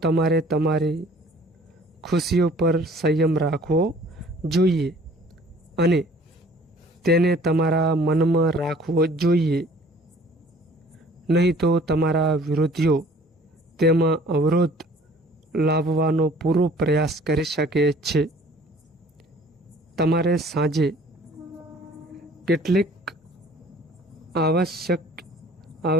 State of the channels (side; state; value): both; normal; correlation 0.53